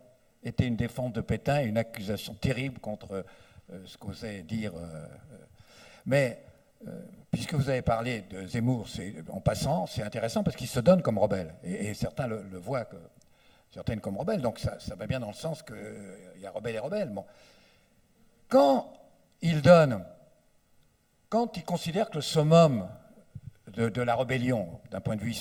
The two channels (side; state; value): both; identical; correlation 1.00